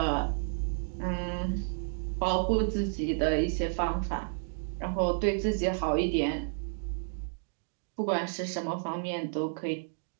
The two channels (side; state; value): left; silent; digital silence